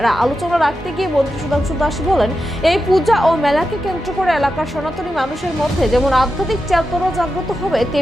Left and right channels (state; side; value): normal; both; correlation 0.89